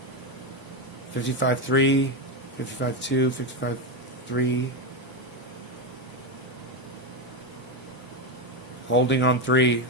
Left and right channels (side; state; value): both; normal; correlation 0.10